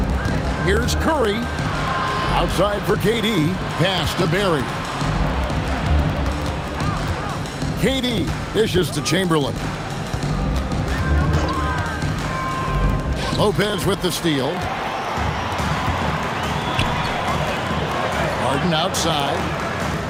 Here's Curry. Outside for KD. Pass to Barry. KD dishes to Chamberlain. Lopez with the steal. Harden outside.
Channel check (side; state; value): both; identical; correlation 1.00